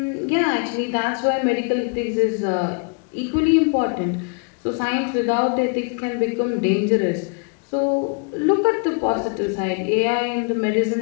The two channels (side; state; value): right; quieter; 37.4 dB